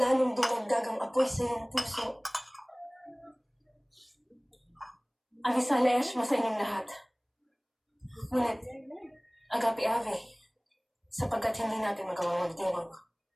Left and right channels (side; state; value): both; identical; correlation 1.00